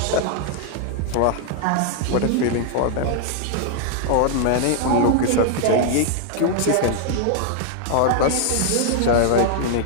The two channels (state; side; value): different; both; correlation 0.00